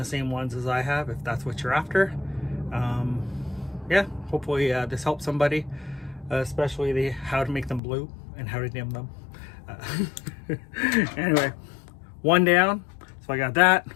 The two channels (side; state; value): right; drops out; at 7.8 s